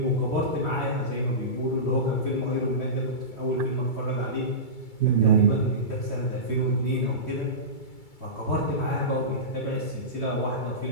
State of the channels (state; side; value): late; right; 2.3 ms